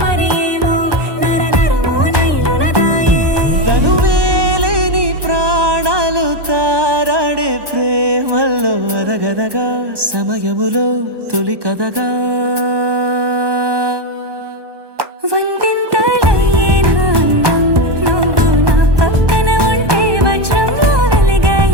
మరేమో నరనరమో నైలునదాయే తను వేలేని ప్రాణాలు తారాడే ప్రేమల్లో అనగనగా సమయములో తొలి కథగా వందెంతలయ్యేనా అందం నువ్వు నా పక్కన ఉంటే వజ్రంలో వెలిగా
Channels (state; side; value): late; left; 1.2 ms